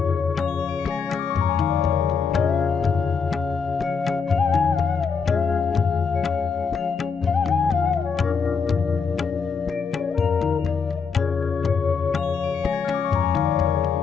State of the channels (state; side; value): quieter; right; 5.6 dB